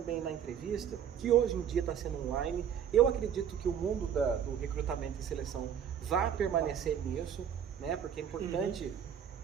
na entrevista, que hoje em dia está sendo online, eu acredito que o mundo do recrutamento e seleção vai permanecer nisso, né? Porque é importante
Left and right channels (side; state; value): left; quieter; 8.6 dB